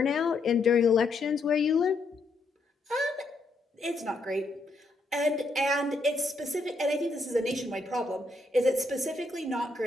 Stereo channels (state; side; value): quieter; right; 3.1 dB